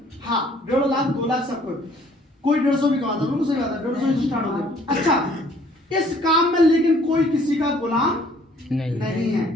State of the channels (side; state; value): both; normal; correlation 0.59